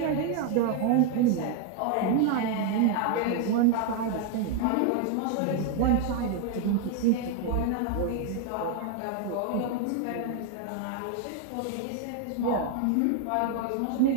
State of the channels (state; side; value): different; both; correlation 0.01